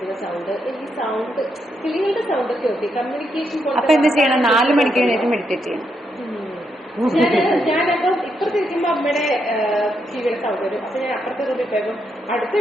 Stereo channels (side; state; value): both; normal; correlation 0.80